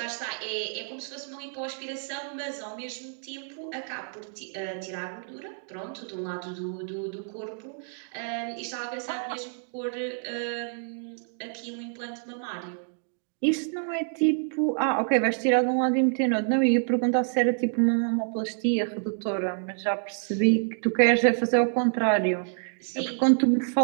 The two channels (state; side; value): silent; left; 59 dB below the other